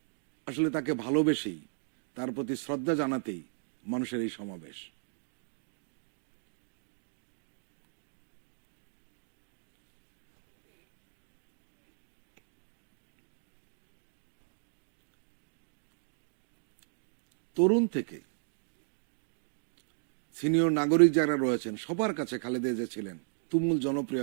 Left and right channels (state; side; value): silent; left; digital silence